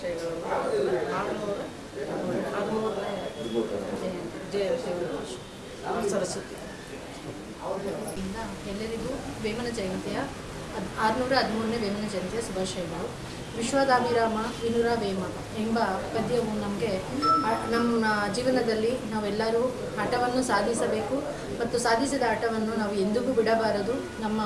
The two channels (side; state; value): both; identical; correlation 1.00